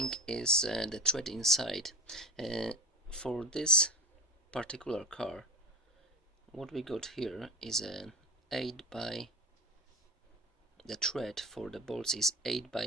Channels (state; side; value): normal; both; correlation 0.30